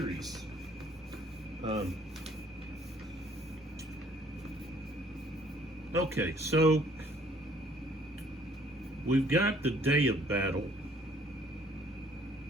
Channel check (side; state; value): both; normal; correlation 0.60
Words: Okay, so we've got the day of battle.